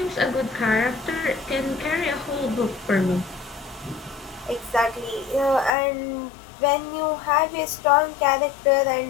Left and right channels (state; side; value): drops out; right; at 5.7 s